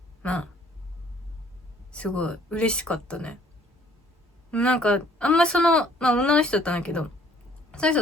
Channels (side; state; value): both; normal; correlation 0.59